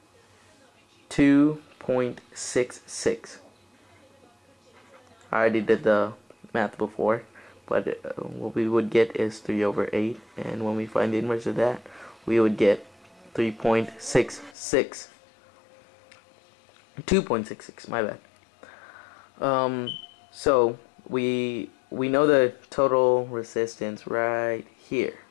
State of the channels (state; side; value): drops out; right; at 14.6 s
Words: I already did the math before, but what we would get is 3 over 8, and when we find the inverse of that, we would get 3.66. 2.66, my bad. So we know the total resistance right here.